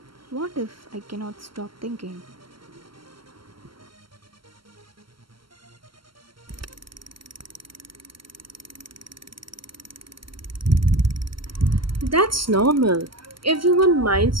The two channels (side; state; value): left; late; 0.74 ms